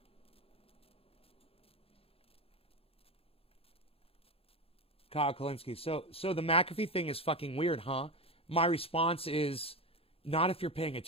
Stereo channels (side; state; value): right; late; 0.28 ms